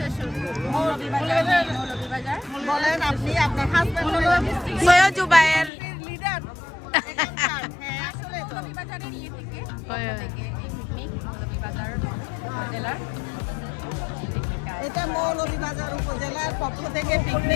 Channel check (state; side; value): drops out; right; at 5.7 s